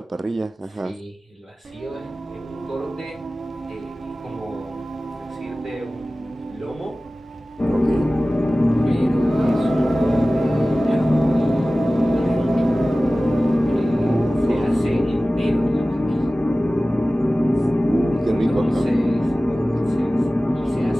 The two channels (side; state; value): both; normal; correlation 0.97